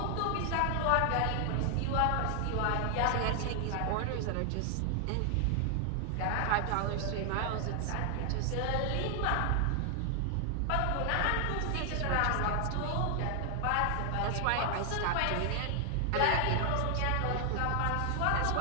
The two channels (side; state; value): both; different; correlation 0.00